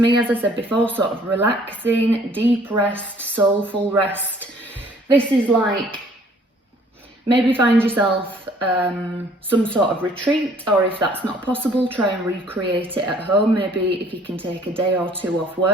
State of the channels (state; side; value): normal; both; correlation 0.58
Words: me, as I said before, sort of relaxing, deep rest, soulful rest. This is like, maybe find yourself some sort of retreat, or if that's not possible, try and recreate it at home. Maybe if you can take a day or two off